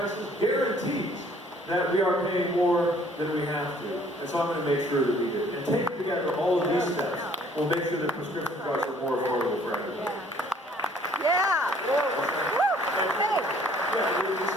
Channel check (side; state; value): both; normal; correlation 0.59